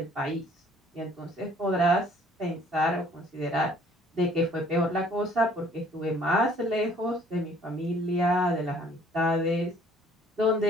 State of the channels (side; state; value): both; normal; correlation 0.57